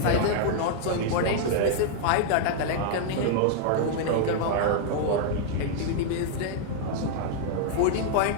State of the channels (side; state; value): both; different; correlation -0.01